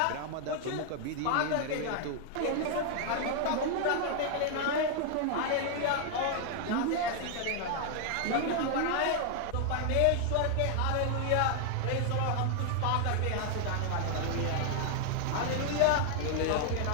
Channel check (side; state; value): both; different; correlation 0.00